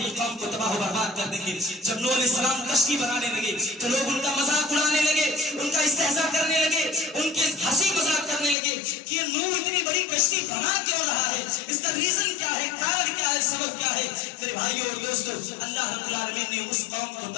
قوم کو تباہ و برباد کر دیں گے۔ جب نوح علیہ السلام کشتی بنانے لگے تو لوگ ان کا مذاق اڑانے لگے، ان کا استہزاء کرنے لگے، ان کے ہنسی مذاق کرنے لگے کہ یہ نوح اتنی بڑی کشتی بنا کیوں رہا ہے، اس کا ریزن کیا ہے، کارن کیا ہے، سبب کیا ہے۔ میرے بھائیوں اور دوستوں، اللہ رب العالمین نے اس قوم کو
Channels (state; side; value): drops out; right; at 8.6 s